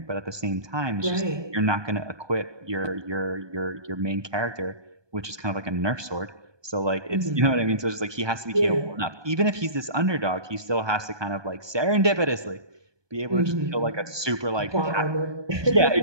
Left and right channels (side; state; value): left; late; 1.2 ms